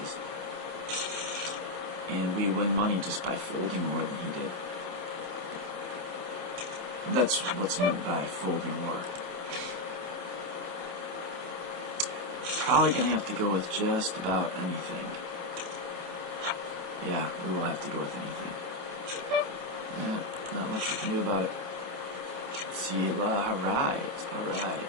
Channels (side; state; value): left; late; 27 ms